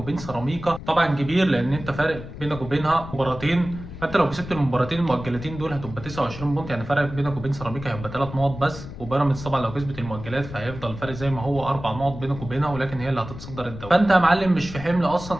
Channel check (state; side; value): noise; left; rumble, 12 dB below the sound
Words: سيراميكا طبعًا كبير لأن أنت فارق بينك وبينها مباراتين، فانت لو كسبت المباراتين المؤجلتين دول هتبقى 29 بونت، يعني فرق بينك وبين سيراميكا هيبقى 3 نقط بس، وبيراميدز طبعا لو كسبت المؤجلات فهيفضل الفرق زي ما هو 4 نقط بينك وبينها، ولكن هي اللي هتتصدر الدوري. فانت يا معلم مش في حمل